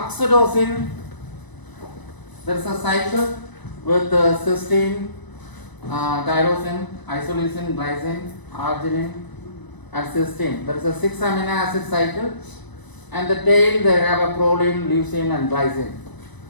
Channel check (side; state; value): right; late; 1.0 ms